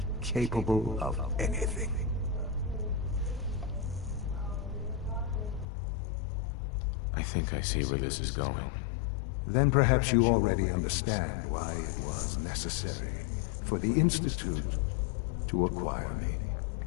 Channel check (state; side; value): drops out; right; at 5.7 s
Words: capable of anything. I think I see where this is going. Then perhaps you already understand why it was necessary for the Institute to acquire me.